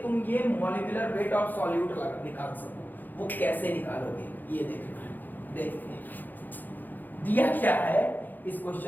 तुम ये मॉलिक्यूलर वेट ऑफ सॉल्यूट निकाल सको। वो कैसे निकालोगे ये देखना है। देखते हैं दिया क्या है इस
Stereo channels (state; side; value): late; right; 0.086 ms